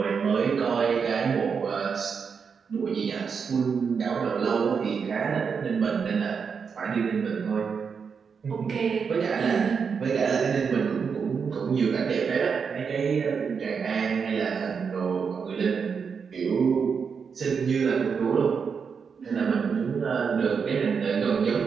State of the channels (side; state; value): left; quieter; 6.0 dB